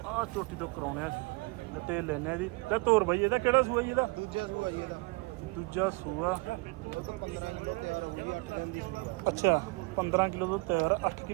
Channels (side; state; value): left; quieter; 26.5 dB